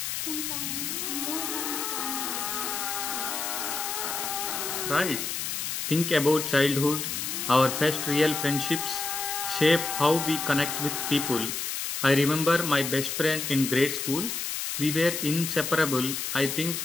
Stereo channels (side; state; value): left; noise; hiss, 3 dB below the sound